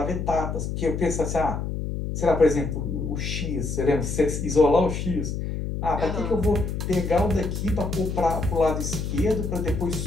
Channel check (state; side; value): noise; left; hum, 3 dB below the sound